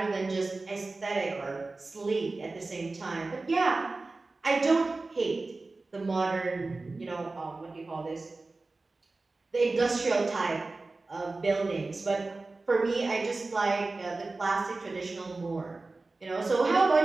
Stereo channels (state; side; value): quieter; left; 3.4 dB